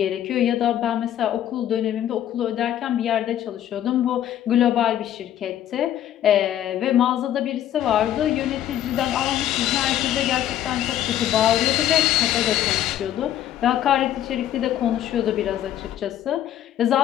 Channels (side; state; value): right; quieter; 11.6 dB